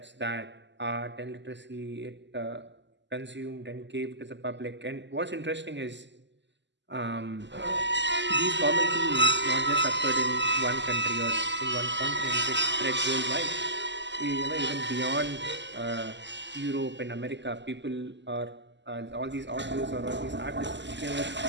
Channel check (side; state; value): left; late; 0.52 ms